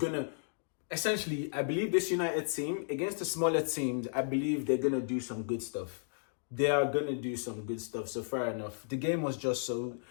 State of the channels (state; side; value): silent; right; digital silence